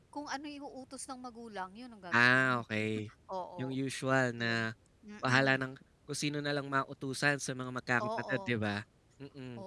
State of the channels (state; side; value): identical; both; correlation 1.00